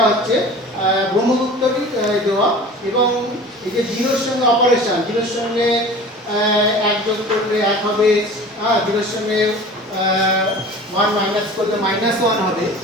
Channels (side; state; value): both; normal; correlation 0.40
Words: হচ্ছে ব্রহ্মগুপ্তরই দেওয়া। এবং এই যে জিরোর সঙ্গে অপারেশন, জিরোর সঙ্গে এক যোগ করলে এক হবে, জিরোর সঙ্গে 1 মাইনাস করলে -1 হবে।